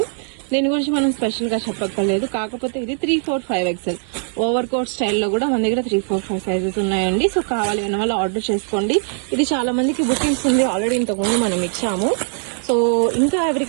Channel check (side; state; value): left; silent; digital silence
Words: దీని గురించి మనం స్పెషల్ గా చెప్పక్కర్లేదు. కాకపోతే ఇది 3, 4, 5 XL ఓవర్ కోట్ స్టైల్లో కూడా మన దగ్గర 3, 4, 5 సైజెస్ ఉన్నాయండి. సో కావాలి అన్న వాళ్ళు ఆర్డర్ చేసుకోండి. ఇది చాలా మందికి బుకింగ్స్ ఉంది, ఆల్రెడీ ఇంతకుముందు మనం ఇచ్చాము. సో ఇంకా